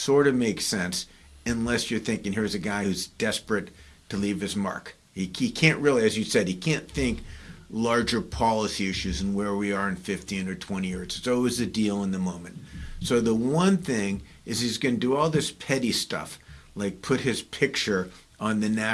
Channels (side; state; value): both; identical; correlation 1.00